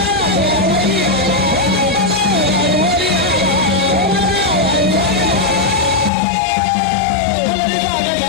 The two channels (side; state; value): right; drops out; at 6.1 s